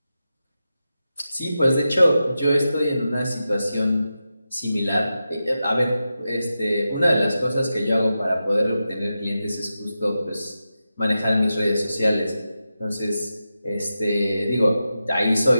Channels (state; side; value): inverted; both; correlation -0.91